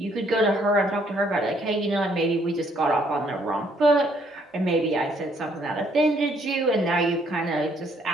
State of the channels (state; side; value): normal; both; correlation 0.67